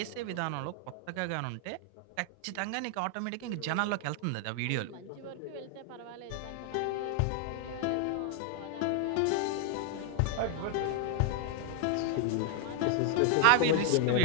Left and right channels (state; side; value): different; both; correlation 0.00